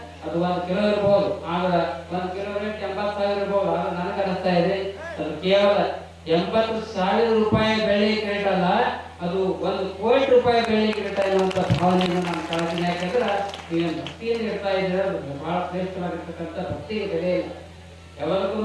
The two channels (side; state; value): both; identical; correlation 1.00